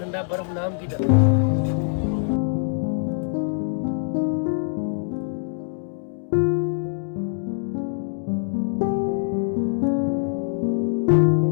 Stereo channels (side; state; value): right; silent; 63 dB below the other